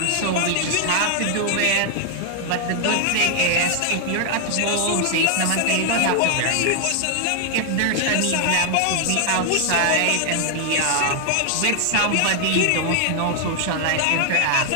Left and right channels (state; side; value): different; both; correlation 0.00